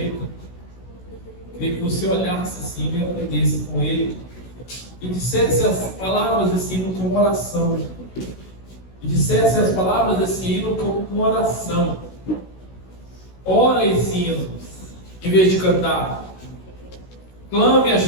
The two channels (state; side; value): late; right; 16 ms